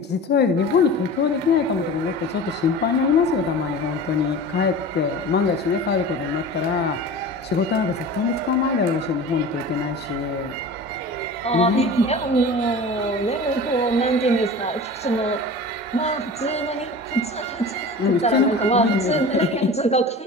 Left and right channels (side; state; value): both; normal; correlation 0.36